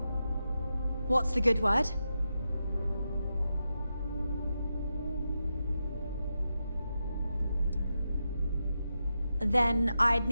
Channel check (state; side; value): inverted; both; correlation -0.88